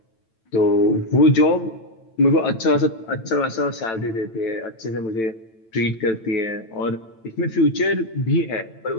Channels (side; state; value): right; late; 9.0 ms